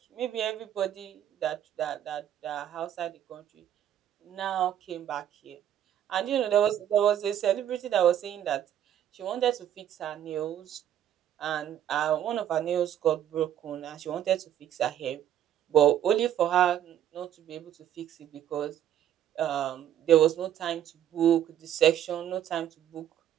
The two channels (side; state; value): left; quieter; 10.7 dB